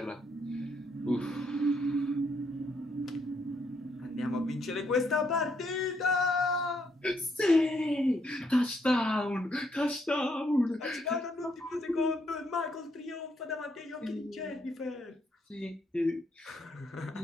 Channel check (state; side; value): normal; both; correlation 0.74